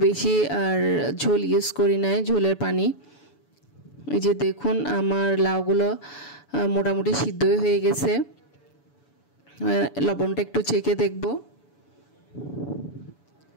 বেশি আর ঝোল ইউজ করি নাই, ঝোলের পানি। এই যে দেখুন আমার লাউগুলো মোটামুটি সিদ্ধ হয়ে গেছে। লবণটা একটু চেখে দেখব।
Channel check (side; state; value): right; late; 7.0 ms